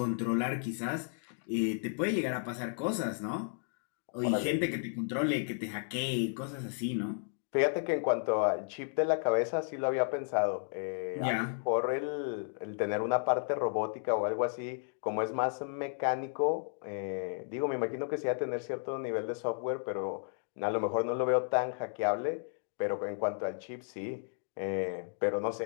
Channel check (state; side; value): silent; right; digital silence